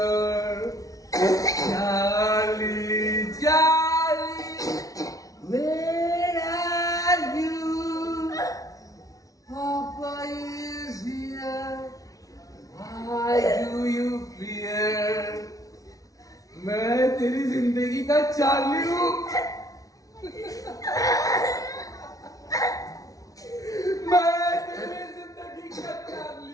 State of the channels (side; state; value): right; late; 0.17 ms